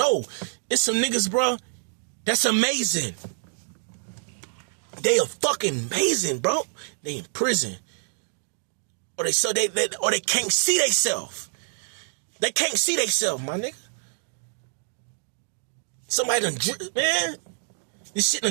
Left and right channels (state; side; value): silent; left; digital silence